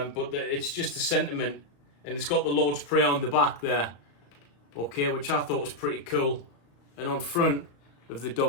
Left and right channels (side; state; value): right; late; 35 ms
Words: it's just a sentiment, and it's got the Lord's Prayer on the back there, okay, which I thought was pretty cool. And on front of the